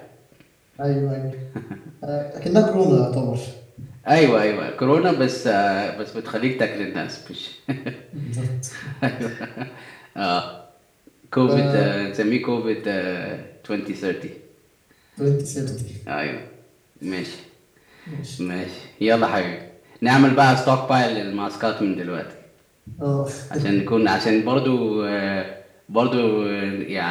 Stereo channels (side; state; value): both; identical; correlation 1.00